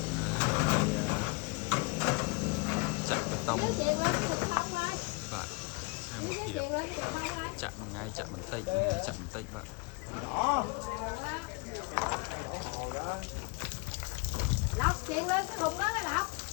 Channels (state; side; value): quieter; right; 29.3 dB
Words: chạm bê tông bạn xem một hiệp chạm một ngày chạm một tích bạn Lọc chuyện lên cái thùng đó mới lọc.